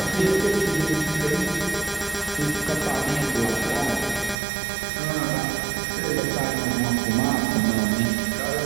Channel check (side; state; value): left; drops out; at 4.4 s